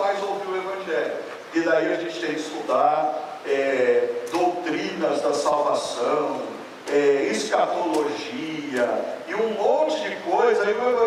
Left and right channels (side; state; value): both; identical; correlation 1.00